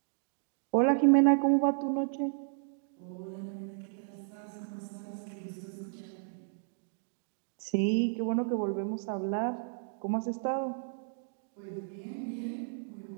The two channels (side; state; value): left; silent; digital silence